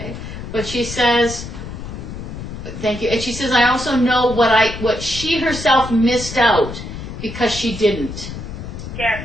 But she says, thank you. And she says, I also know what she herself missed out because she didn't. Yes.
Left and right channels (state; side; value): noise; left; rumble, 9 dB below the sound